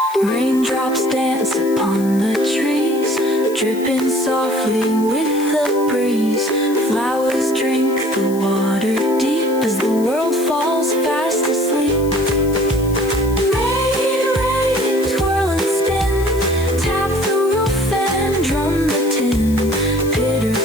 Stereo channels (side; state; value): left; noise; hiss, 17 dB below the sound